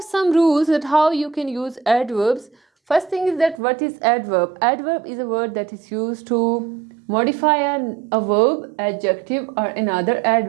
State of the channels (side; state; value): left; drops out; at 3.6 s